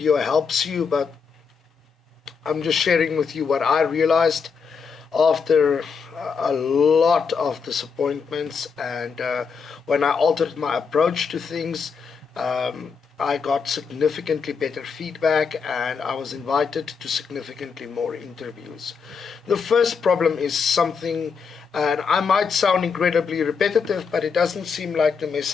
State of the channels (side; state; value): right; quieter; 5.7 dB